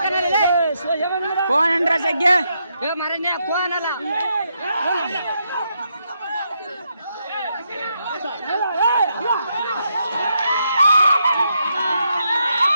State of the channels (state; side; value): inverted; both; correlation -0.79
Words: ಫೋನ್ ಅಂದ್ರ ಸಗ್ಗೆ ಮರನೇ ಫೋನ್ ಅಲ್ಲ